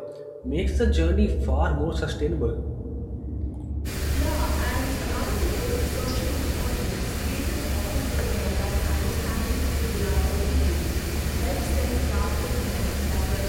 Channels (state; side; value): identical; both; correlation 1.00